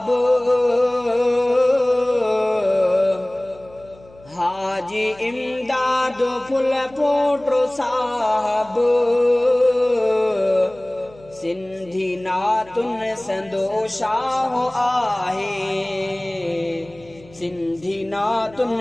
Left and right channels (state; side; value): noise; left; hum, 25 dB below the sound